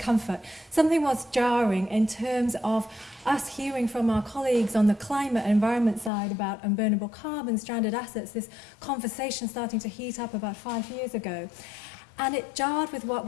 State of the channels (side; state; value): right; drops out; at 6.1 s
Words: Something was jarring in terms of us hearing from our colleagues on the climate and environment side about unburnable carbon, stranded assets, this conversation starting to heat up about 5 years ago. And it jarred with what